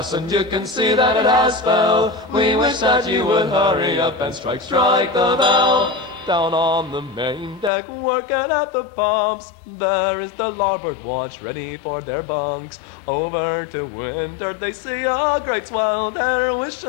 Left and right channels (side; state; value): right; drops out; at 7.7 s